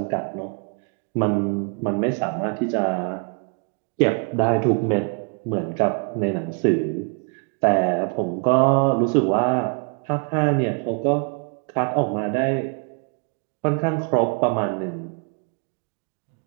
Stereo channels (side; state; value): left; quieter; 38.4 dB